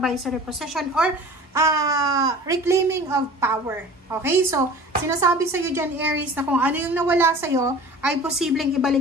position or reclaiming of power. Okay? So, sinasabi sa iyo dyan, Aries, na kung ano yung nawala sa iyo ay posibleng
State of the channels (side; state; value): both; normal; correlation 0.42